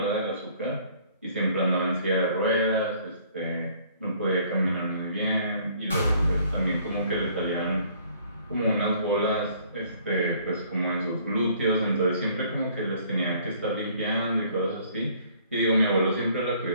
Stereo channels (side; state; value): both; inverted; correlation -0.59